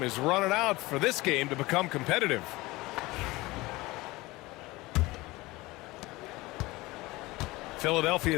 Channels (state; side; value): quieter; right; 20.8 dB